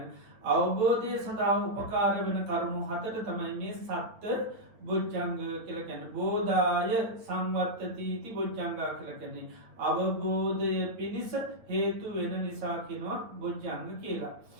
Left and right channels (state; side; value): late; left; 8.9 ms